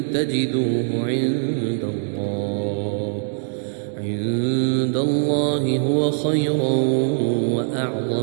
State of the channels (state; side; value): silent; left; digital silence